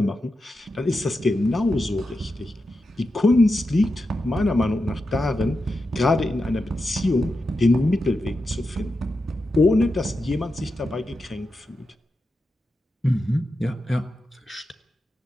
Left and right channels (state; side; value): normal; both; correlation 0.89